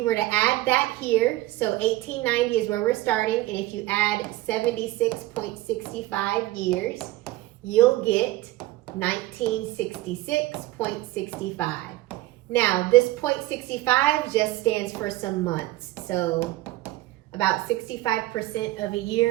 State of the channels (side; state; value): left; quieter; 17.4 dB